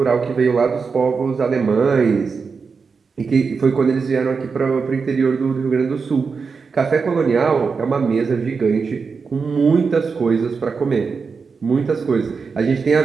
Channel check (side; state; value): left; quieter; 5.2 dB